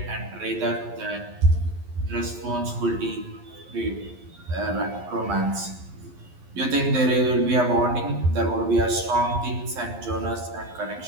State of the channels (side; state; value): left; late; 11 ms